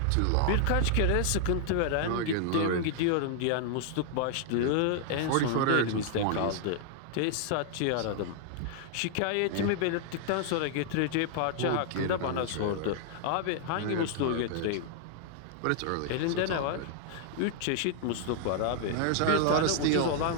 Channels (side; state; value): both; different; correlation 0.00